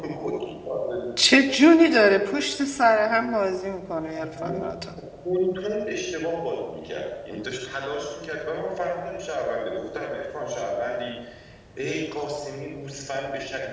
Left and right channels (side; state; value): both; identical; correlation 1.00